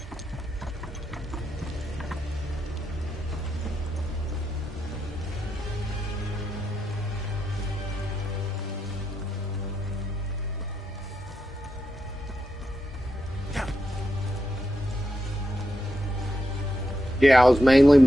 Yeah, I was mainly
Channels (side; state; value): both; normal; correlation 0.85